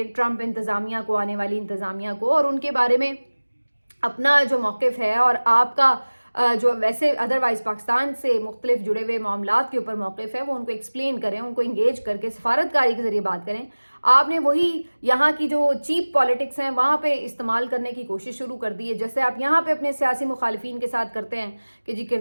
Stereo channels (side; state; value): both; inverted; correlation -1.00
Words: ट्रंप इंतज़ामिया को, आने वाली इंतज़ामिया को, और उनके बारे में अपना जो मौक़िफ़ है और आपका जो वैसे अदरवाइज़ पाकिस्तान से मुख्तलिफ जुड़े हुए मामलात के ऊपर मौक़िफ़ है वो उनको एक्सप्लेन करें, उनको इंगेज करके सफारतकारी के ज़रिए बात करें। आपने वही यहाँ की जो चीप पॉलिटिक्स हैं वहाँ पे इस्तेमाल करने की कोशिश शुरू कर दी है। जैसे आप यहाँ पे अपने सियासी मुखालिफिन के साथ करते हैं कि जी